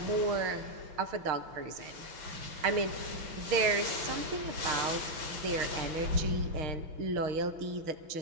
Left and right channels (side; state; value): left; late; 6.5 ms